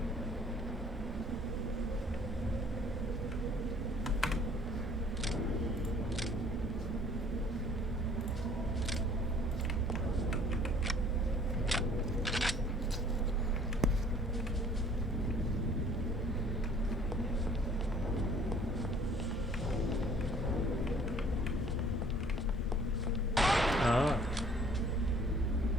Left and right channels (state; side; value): normal; both; correlation 0.54